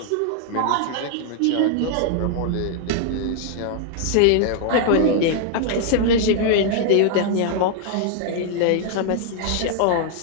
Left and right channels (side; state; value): both; different; correlation 0.00